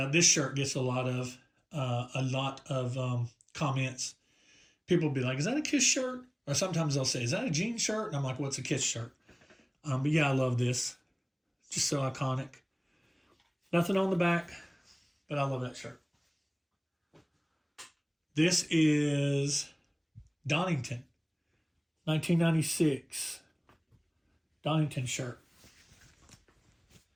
this shirt gets a lot of comments. People will be like, is that a Kiss shirt? Or sometimes they'll say, is that a jean shirt? And I'm like, what's a Kiss shirt? But yeah, I love this. Just so iconic. Nothing on the back, but I love that shirt. This is Donington, 1996. Donington shirt.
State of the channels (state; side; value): identical; both; correlation 1.00